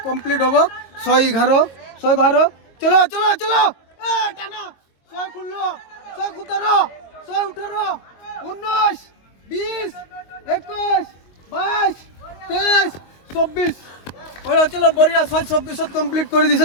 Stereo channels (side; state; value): right; late; 22 ms